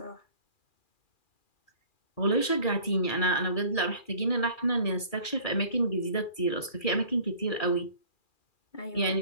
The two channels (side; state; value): right; late; 2.4 ms